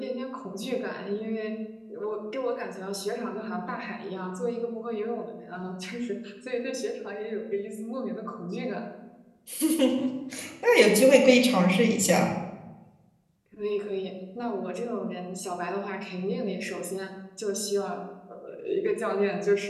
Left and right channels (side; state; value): both; identical; correlation 1.00